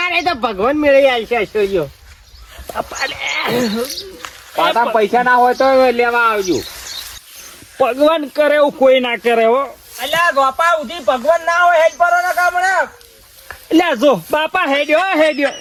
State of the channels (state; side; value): identical; both; correlation 1.00